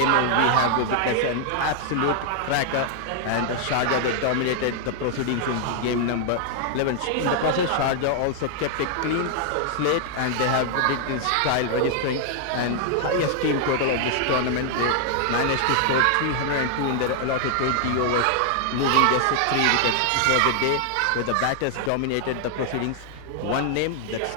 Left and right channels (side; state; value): both; different; correlation 0.00